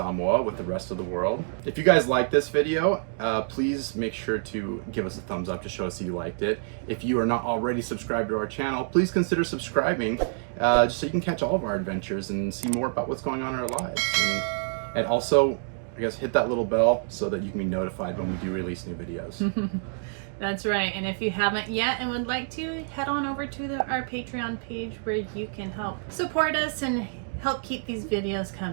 with the rest of the world. If you guys like this video, please make sure to give us a thumbs up to show us that you liked it. If you are not already subscribed to our channel, please consider subscribing just so you can catch all of our adventures and see more about what's going on in our lives. And also, I guess, hit that little bell so that you can be notified when we do release new videos. That's right. And if you haven't yet and would like to, head on over to our Patreon page where you can help support us and help keep these videos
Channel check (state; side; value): silent; left; digital silence